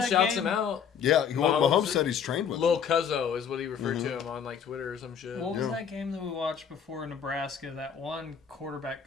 shouts game? him out. Yeah, Mahomes Mahomes- said he's trained with Lil him. Cuzzo is what he referred Mm-hmm. to him on like Twitter or some shit. What was Yeah. that game that we watched before Nebraska? That one quarterback.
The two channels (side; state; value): right; quieter; 7.5 dB